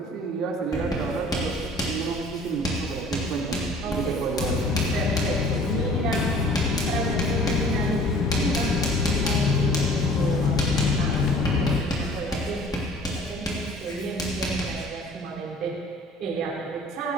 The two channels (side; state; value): both; normal; correlation 0.50